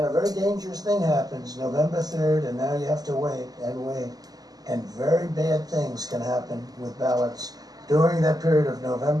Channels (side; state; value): left; late; 0.18 ms